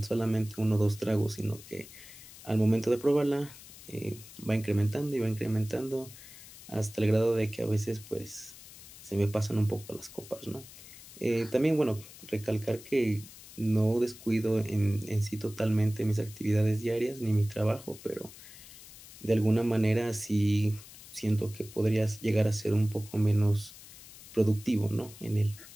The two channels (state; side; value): noise; left; hiss, 18 dB below the sound